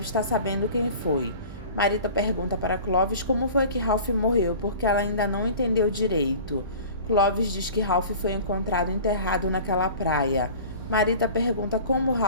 estar sabendo quem foi. Marita pergunta para Clovis como foi que Ralph morreu, porque ela ainda não entendeu direito. Clovis diz que Ralph foi encontrado enterrado naquela praia. Marita pergunta como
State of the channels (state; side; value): inverted; both; correlation -0.41